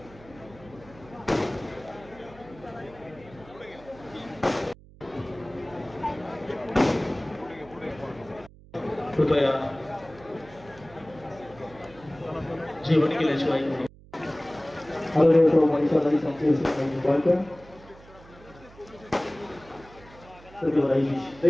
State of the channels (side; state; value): right; noise; hum, 22 dB below the sound